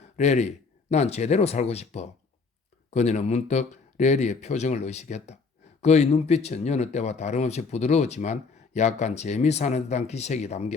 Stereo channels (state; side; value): quieter; right; 4.5 dB